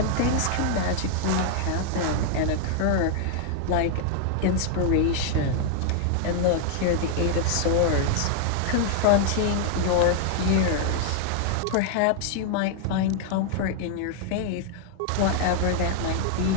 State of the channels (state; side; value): different; both; correlation 0.00